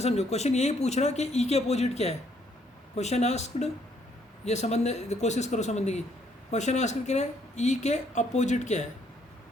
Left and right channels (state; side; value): normal; both; correlation 0.68